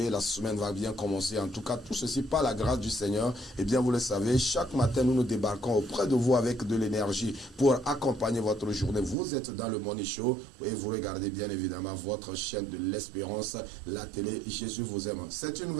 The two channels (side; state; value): left; drops out; at 9.2 s